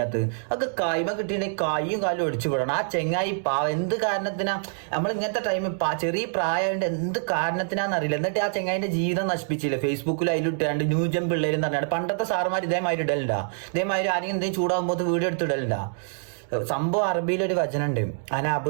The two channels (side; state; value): left; silent; digital silence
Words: ഒക്കെ കായ്മ കിട്ടിയിട്ടുണ്ടെങ്കിൽ കൈയും കാലും ഒടിച്ചു വിടണം. ആ ചെങ്ങായി എന്ത് കാരണത്തിനാ നമ്മൾ ഇങ്ങനത്തെ ടൈമിൽ ചെറിയ പ്രായമായിട്ട് എന്ത് കാരണത്തിനാന്നറിയില്ല. എന്നിട്ട് ആ ചെങ്ങായിന്റെ ജീവിതം നശിപ്പിച്ചില്ല. ഫേസ്ബുക്കിൽ അതിലിട്ടാണ്ട് ന്യൂജൻ പിള്ളേരും പറഞ്ഞാണ്ട് പണ്ടത്തെ സാറുമാർ ഇതേമാതിരി ഇടലുണ്ടാ. ഇതേമാതിരി ആരെങ്കിലും എന്തെങ്കിലും ചൂടാകുമ്പോൾ വീഡിയോ എടുത്തിടലുണ്ടാ. സംഭവം അറബിയിലൊരു വചനുണ്ട്,